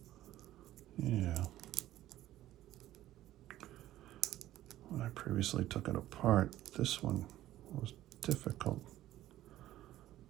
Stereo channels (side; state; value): left; quieter; 14.2 dB